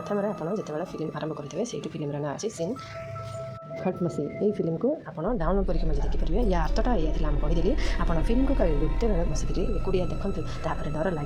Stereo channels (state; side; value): identical; both; correlation 1.00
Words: ଆପଣ ଯେତେବେଳେ ଫିଲ୍ମ ଆରମ୍ଭ କରିଥିବେ ସେଇଠି ଫିଲ୍ମର ନାଁ ଅଛି ସିନ୍ ହଟ୍ ମସି। ଏଇ ଫିଲ୍ମକୁ ଆପଣ ଡାଉନଲୋଡ଼ କରିକି ମଧ୍ୟ ଦେଖିପାରିବେ। ୟା ଅର୍ଥଟା ଏଇଆ ଥିଲା, ମୁଁ କହିଦେଲି। ଆପଣ ଫିଲ୍ମକୁ ଗୋଟେ ବେଳେ ବସିକିରି ଏକୁଟିଆ ଦେଖନ୍ତୁ, ତାପରେ ଡର